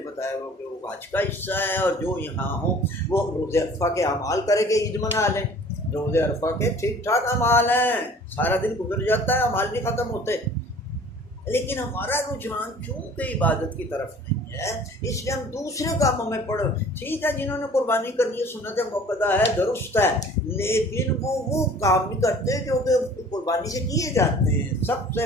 بتایا وہ کہ وہ حج کا حصہ ہے، اور جو یہاں ہوں وہ روزہ عرفہ کے اعمال کرے کہ عید منا لیں، روزہ عرفہ کے ٹھیک ٹھاک اعمال ہیں، سارا دن گزر جاتا ہے، اعمال نہیں ختم ہوتے، لیکن ہمارا رجحان چونکہ عبادت کی طرف نہیں ہے، اس لیے ہم دوسرے کاموں میں پڑھ، ٹھیک ہے جنہوں نے قربانی کرنی ہے سنت موقدہ ہے، درست ہے، لیکن وہ کام نہیں کرتے جو کہ قربانی سے کیے جاتے ہیں۔ سب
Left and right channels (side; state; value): both; normal; correlation 0.49